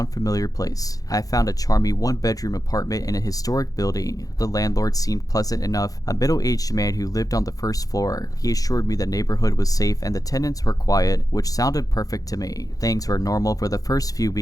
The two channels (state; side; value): late; right; 0.17 ms